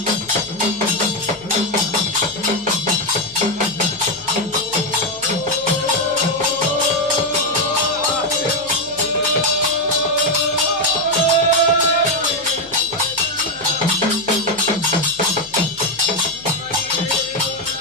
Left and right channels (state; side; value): noise; left; hum, 24 dB below the sound